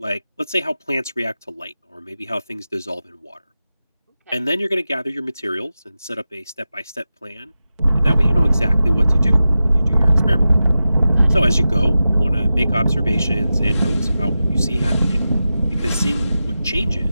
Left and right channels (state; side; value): inverted; both; correlation -0.93